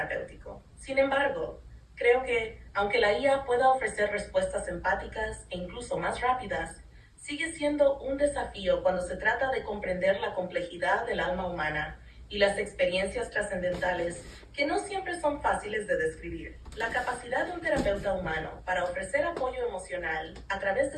Sin embargo, creo que, aunque la IA pueda ofrecer respuestas empáticas e incluso más rápidas, sigue siendo un desafío cuando se trata de comprender la complejidad del alma humana y las experiencias trascendentales que no siempre son fáciles de describir. La capacidad de un terapeuta humano para ofrecer apoyo emocional a través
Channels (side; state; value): both; identical; correlation 1.00